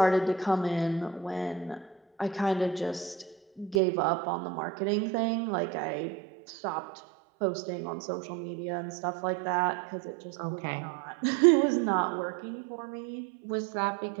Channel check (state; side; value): drops out; left; at 3.8 s